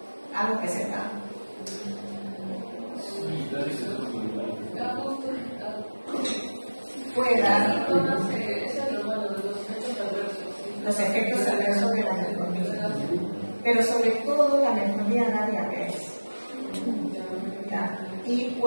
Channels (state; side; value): inverted; both; correlation -1.00